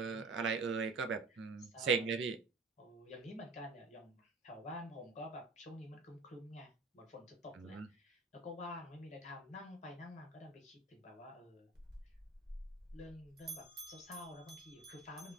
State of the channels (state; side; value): quieter; left; 3.7 dB